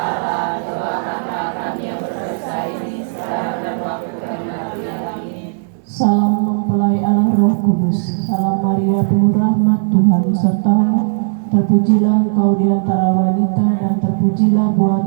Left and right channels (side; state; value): left; silent; digital silence